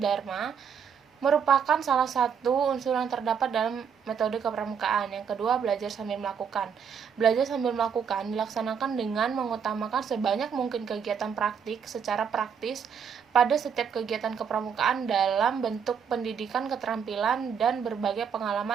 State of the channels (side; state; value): left; quieter; 7.1 dB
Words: merupakan salah satu unsur yang terdapat dalam metode kepramukaan. Yang kedua, belajar sambil melakukan. Belajar sambil melakukan dilaksanakan dengan mengutamakan sebanyak mungkin kegiatan praktik secara praktis pada setiap kegiatan kepramukaan dalam bentuk pendidikan keterampilan dan berbagai